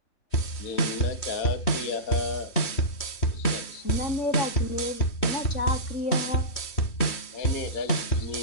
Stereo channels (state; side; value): late; right; 3.2 ms